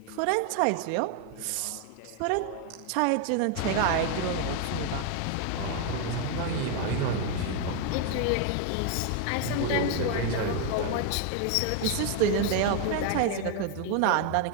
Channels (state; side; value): different; both; correlation 0.01